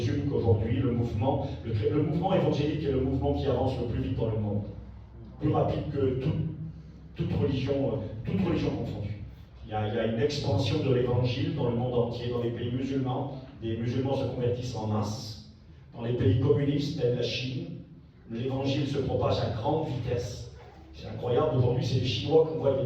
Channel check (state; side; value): identical; both; correlation 1.00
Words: qu'aujourd'hui, le mouvement évangélique est le mouvement qui avance le plus vite dans le monde. Plus rapide que toute religion confondue. Il y a une expansion de l'évangile dans le monde entier, dans les pays musulmans. Les musulmans se convertissent en masse. Dans les pays communistes, tels la Chine, l'évangile se propage à grande vitesse. C'est incroyable, aujourd'hui c'est les Chinois qu'on voit des